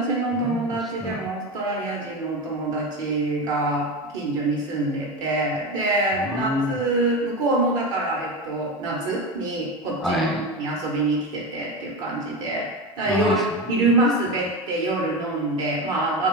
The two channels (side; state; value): both; normal; correlation 0.20